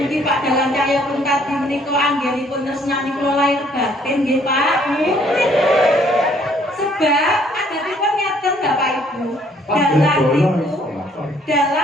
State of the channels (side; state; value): both; normal; correlation 0.63